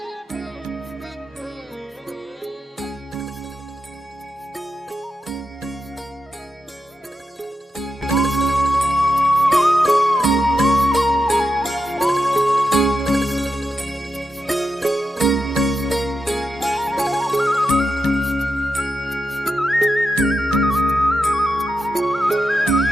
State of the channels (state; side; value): normal; both; correlation 0.87